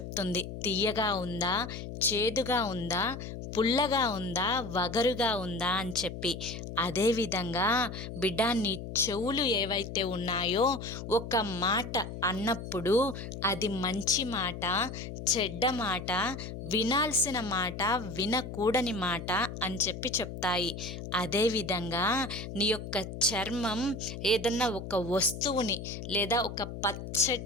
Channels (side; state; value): left; noise; hum, 8 dB below the sound